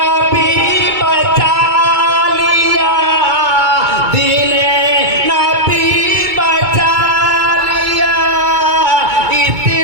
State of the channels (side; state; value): left; late; 2.3 ms